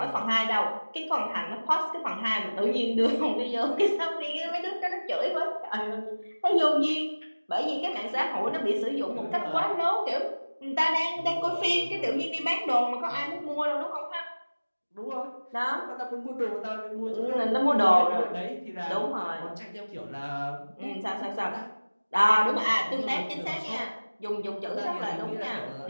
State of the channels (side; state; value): both; inverted; correlation -1.00